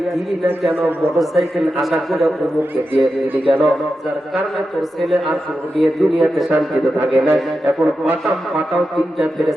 দিলি না কেন, মোটরসাইকেল আশা করে অমুককে দিয়ে দিলি কেন, যার কারণে তোর ছেলে আর তোর মেয়ে দুনিয়াতে শান্তিতে থাকে না। এখন পাঠাও তিনটা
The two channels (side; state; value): both; normal; correlation 0.90